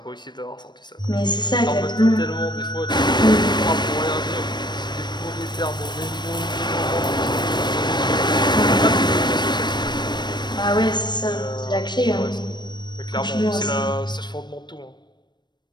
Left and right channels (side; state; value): right; late; 0.21 ms